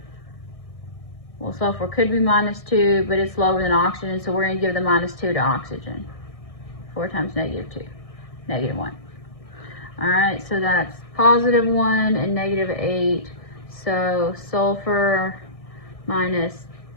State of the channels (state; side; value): late; right; 1.6 ms